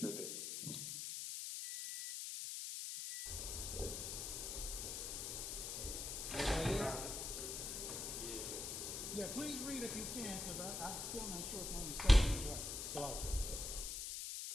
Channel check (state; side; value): noise; left; hiss, 4 dB below the sound